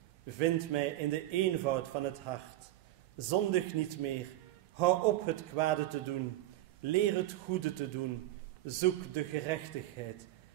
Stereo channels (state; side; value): quieter; left; 15.1 dB